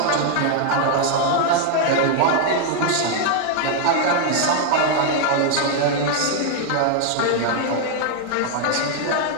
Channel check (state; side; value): different; both; correlation 0.00